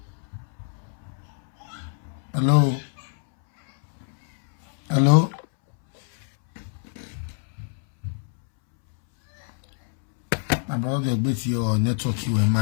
Hello. Hello. My brother, they beat your network you and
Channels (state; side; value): silent; right; 62 dB below the other